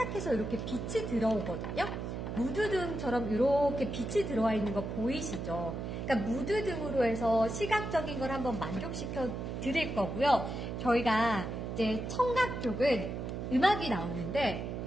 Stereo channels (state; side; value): noise; right; hum, 5 dB below the sound